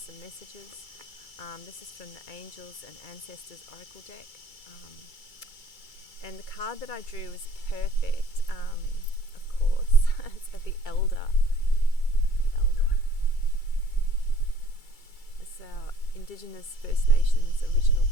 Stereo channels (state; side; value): late; right; 2.3 ms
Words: messages. This is from the Angels and Ancestors Oracle deck. And the card that I drew was perfect, of course. It's the Elder. The Elder. It's our Indigenous First Nations original